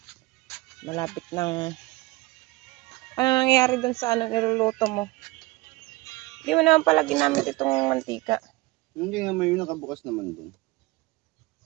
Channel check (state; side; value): quieter; left; 21.5 dB